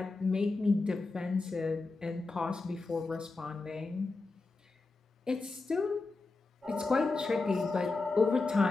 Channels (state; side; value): quieter; right; 3.6 dB